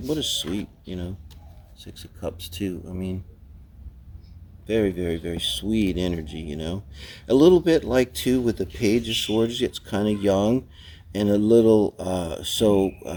a sweet, Six of Cups too. I mean, very, very, very sweet energy, A little bit like, too, with the Page of Swords, it's kind of young and a little,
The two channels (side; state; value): both; identical; correlation 1.00